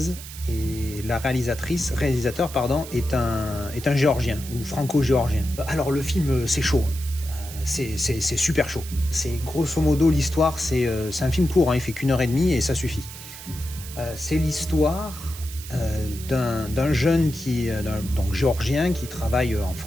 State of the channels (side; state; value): right; noise; hiss, 13 dB below the sound